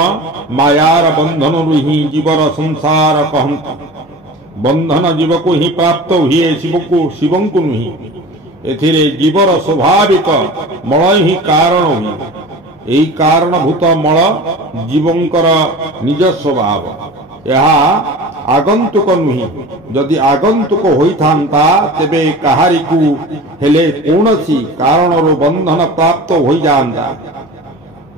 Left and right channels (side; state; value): both; normal; correlation 0.36